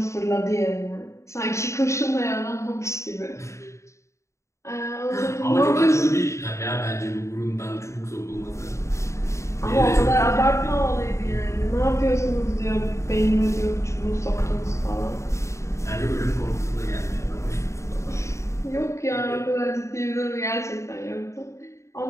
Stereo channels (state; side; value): late; right; 0.14 ms